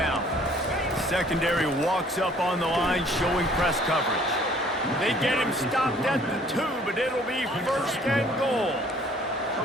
Secondary walks up on the line, showing press coverage. They get him stopped at the 2, but it'll be first and goal.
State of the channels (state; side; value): normal; both; correlation 0.57